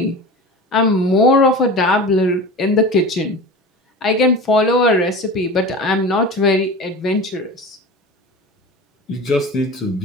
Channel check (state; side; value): normal; both; correlation 0.32